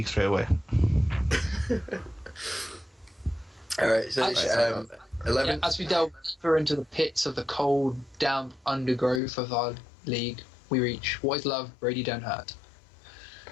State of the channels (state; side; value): drops out; right; at 9.2 s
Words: straight away. Alright, so 11. Yeah, as we delve deeper into the pits of the cold, damp undergrowth of our league, we reach What Is Love, Brady Don't Hurt.